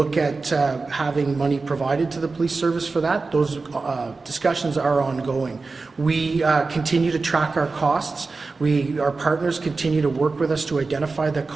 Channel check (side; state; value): left; quieter; 4.0 dB